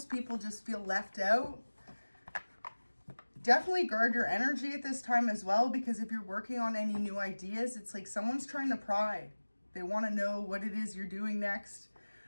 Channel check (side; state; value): both; inverted; correlation -1.00